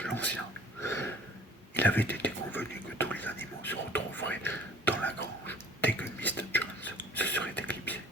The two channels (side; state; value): both; normal; correlation 0.50